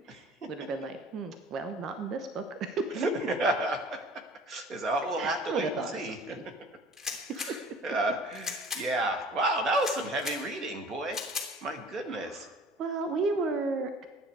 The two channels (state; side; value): normal; both; correlation 0.47